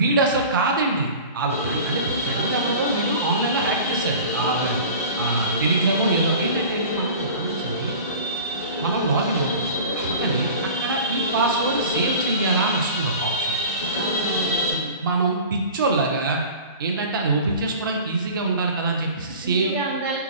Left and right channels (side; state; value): both; inverted; correlation -0.39